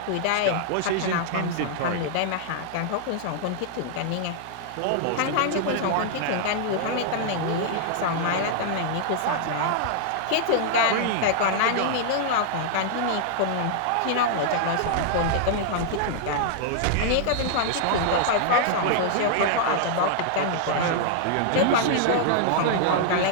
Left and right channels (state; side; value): different; both; correlation -0.01